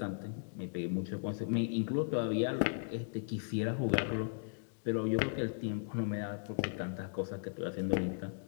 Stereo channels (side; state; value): right; silent; digital silence